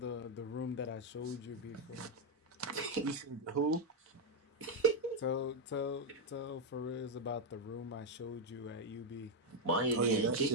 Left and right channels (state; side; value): normal; both; correlation 0.01